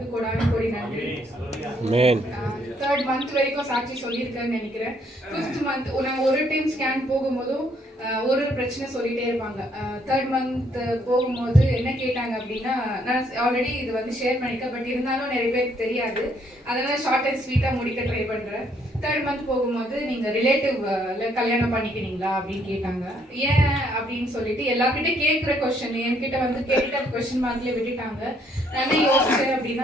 கொடான கொடி நன்றி. 3rd மந்த் வரைக்கும் சாட்சி சொல்லியிருக்கேன்னு நினைக்கிறேன். 5th மந்த் நாங்கள் ஒரு டைம் ஸ்கேன் போகும்போதும் ஒரு பிரச்சனை சொல்லிகிட்டே இருப்பாங்க. 3rd மந்த் போகும்போது என்ன கேட்டாங்க அப்படின்னா, நான் ஆல்ரெடி இது வந்து ஷேர் பண்ணியிருக்கேன், பட் இருந்தாலும் நிறைய பேருக்கு தெரியாது, அதனால் ஷார்ட் அண்ட் ஸ்வீட்டாக முடிக்க ட்ரை பண்ணுறேன். 3rd மந்த் போகும்போது நீங்கள் ரிலேட்டிவ்ல கல்யாணம் பண்ணிக்கிறீங்களா அப்படின்னு கேட்டாங்க. ஏன் அப்படின்னு சொல்லிட்டு எல்லாருக்கிட்டே கேட்குற கொஸ்டின் என்கிட்ட வந்து கேட்ட கொஸ்டின் மார்க்லேயே விட்டுட்டாங்க. நான் யோசிச்சேன்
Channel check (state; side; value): normal; both; correlation 0.68